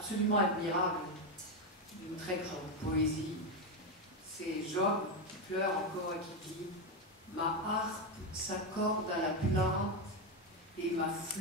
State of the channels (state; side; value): normal; both; correlation 0.08